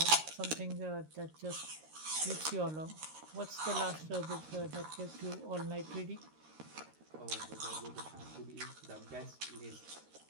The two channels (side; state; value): left; late; 13 ms